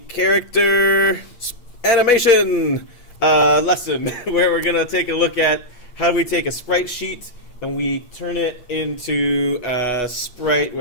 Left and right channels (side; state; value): right; late; 8.2 ms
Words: character animation lesson where we're going to take a look at how we take a sprite sheet and we turn it into a sprite